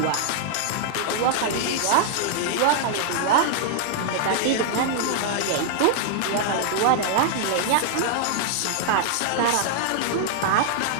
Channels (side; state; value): both; different; correlation -0.01